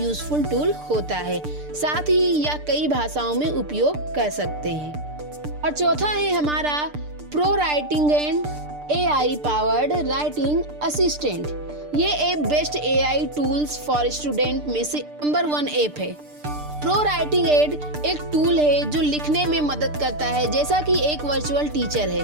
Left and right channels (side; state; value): left; late; 6.7 ms